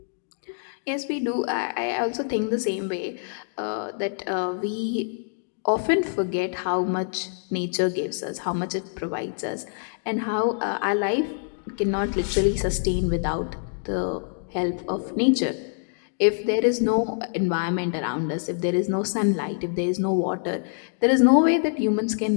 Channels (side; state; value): right; silent; digital silence